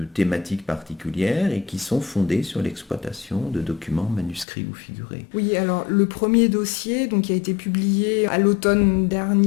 thématique particulière et qui sont fondés sur l'exploitation de documents manuscrits ou figurés. Oui, alors le premier dossier qui a été publié à l'automne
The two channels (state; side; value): drops out; right; at 4.5 s